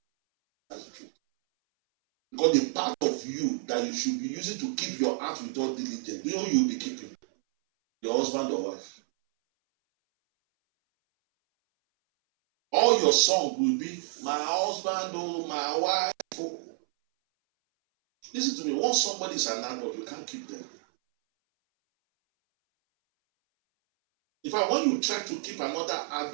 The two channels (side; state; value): left; silent; 59 dB below the other